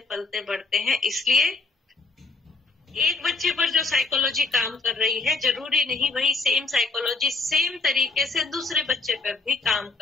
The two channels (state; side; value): quieter; right; 3.7 dB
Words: पलते बढ़ते हैं। इसलिए एक बच्चे पर जो साइकोलॉजी काम कर रही है, जरूरी नहीं वही सेम साइकोलॉजी सेम तरीके से दूसरे बच्चे पर भी काम